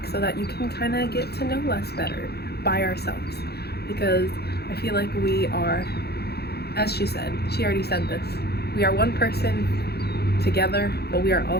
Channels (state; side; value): late; right; 0.47 ms